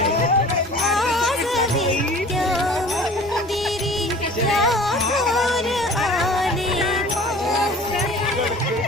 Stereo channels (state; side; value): normal; both; correlation 0.45